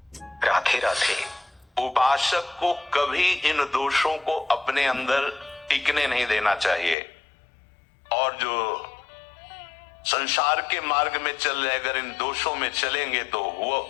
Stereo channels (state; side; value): drops out; right; at 7.0 s